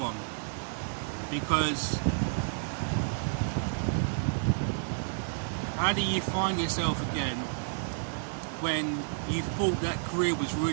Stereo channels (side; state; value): left; silent; digital silence